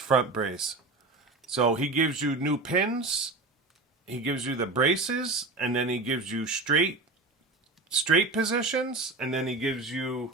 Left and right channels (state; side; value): quieter; left; 3.4 dB